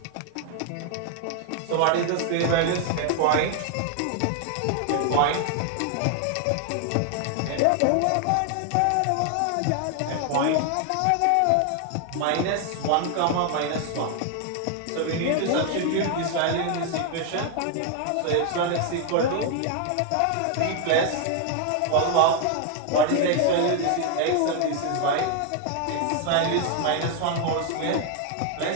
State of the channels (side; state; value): both; different; correlation 0.00